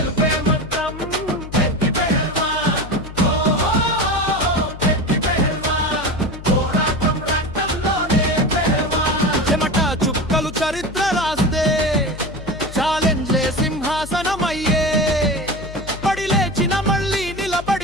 మంత్రం పెద్ది పెహల్వాన్ పెద్ది పెహల్వాన్ పోరాటం రక్తంలోనే పెహల్వాన్ చెమట చుక్కలు చరిత్ర రాస్తే ఛాలెంజ్లే సింహాసనమయ్యే పడి లేచిన మళ్ళీ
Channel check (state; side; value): noise; left; hum, 13 dB below the sound